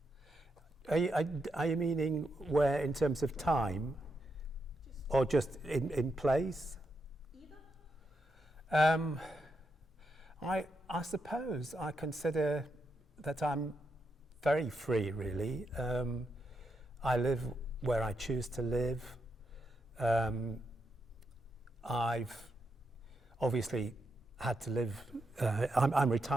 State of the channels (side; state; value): both; normal; correlation 0.82